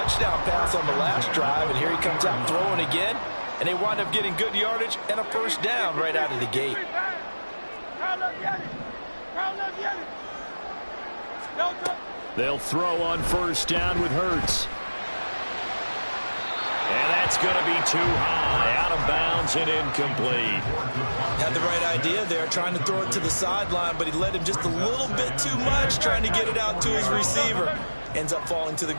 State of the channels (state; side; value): inverted; both; correlation -1.00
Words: pass on the last drive, and here he comes out throwing again. And they wind up getting good yardage and a first down right out of the gate. They'll throw on first down with Hurts. And that's going to be too high, out of bounds and incomplete. Had the right idea there, trying to throw it to the sideline, but he led him just a little bit too much, trying to get it out to his receiver. Ends up falling to the